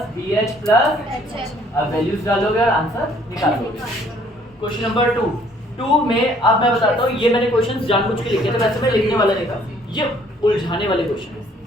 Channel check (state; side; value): normal; both; correlation 0.61